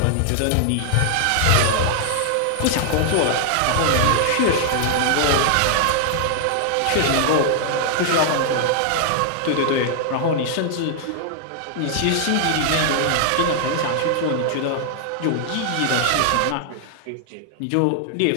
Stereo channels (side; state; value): both; different; correlation -0.01